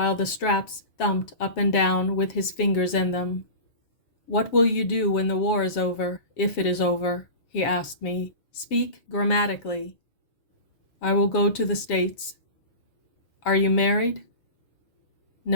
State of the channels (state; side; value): late; right; 7.2 ms